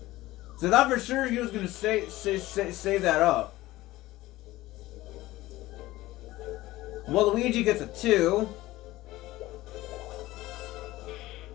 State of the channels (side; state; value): right; quieter; 17.5 dB